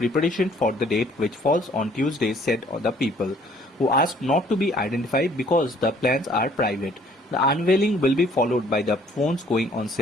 for the date which falls on Tuesday, said the people, who asked not to be identified because the plans are private. The unveiling will be followed by the phones going on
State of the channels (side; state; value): both; normal; correlation 0.59